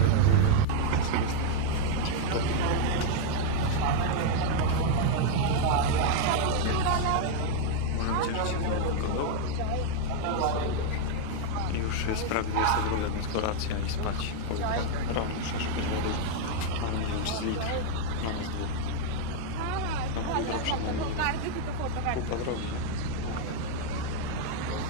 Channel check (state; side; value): different; both; correlation 0.00